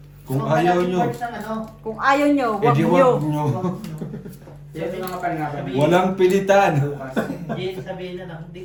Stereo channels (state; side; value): identical; both; correlation 1.00